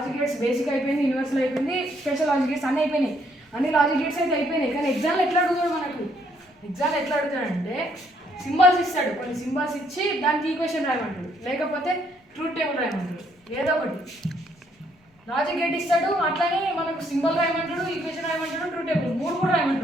గేట్స్ బేసిక్ అయిపోయింది, యూనివర్సల్ అయిపోయింది, స్పెషల్ లాజిక్ గేట్స్ అన్నీ అయిపోయినాయి. అన్ని లాజిక్ గేట్స్ అయితే అయిపోయినాయి. కానీ ఎగ్జామ్లో ఎట్లా అడుగుతాడు మనకు, ఎగ్జామ్లో ఎట్లా అడుగుతాడంటే సింబల్స్ ఇస్తాడు, కొన్ని సింబల్స్ ఇచ్చి దానికి ఈక్వేషన్ రాయమంటాడు, లేకపోతే ట్రూత్ టేబుల్ రాయమంటాడు, ఏదో ఒకటి లాజిక్ గేట్ ఇస్తాడు. అట్లానే మనకు సింబల్ రాయమంటాడు, ఈక్వేషన్ రాయమంటాడు, ట్రూత్ టేబుల్ 3 కూడా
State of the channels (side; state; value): both; normal; correlation 0.70